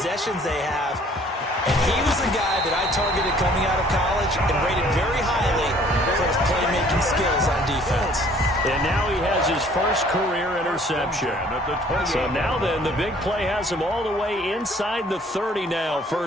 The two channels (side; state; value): both; normal; correlation 0.57